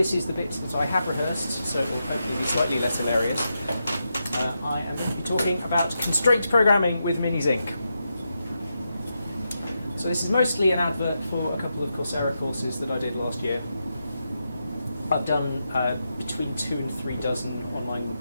is the bit that I have rehearsed, so it will hopefully be slightly less hilarious. I am going to be talking about constraint programming with MiniZinc. So this is mostly an advert for a couple of Coursera courses that I did last year. I've done between 2 and 3 dozen online,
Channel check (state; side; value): inverted; both; correlation -0.86